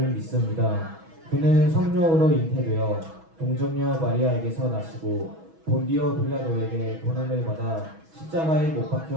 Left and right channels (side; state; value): left; late; 6.2 ms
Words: 믿습니다. 그는 성령으로 잉태되어 동정녀 마리아에게서 나시고 본디오 빌라도에게 고난을 받아 십자가에 못